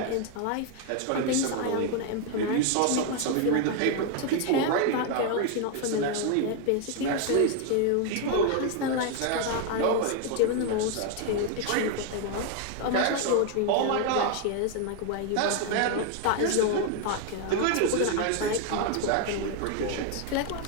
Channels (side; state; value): both; different; correlation 0.00